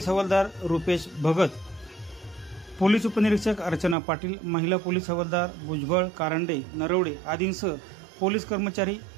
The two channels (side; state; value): left; drops out; at 4.0 s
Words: हवालदार रुपेश भगत, पोलीस उपनिरीक्षक अर्चना पाटील, महिला पोलीस हवालदार भुजबळ, कारंडे, नरवडे आदींसह पोलीस कर्मचारी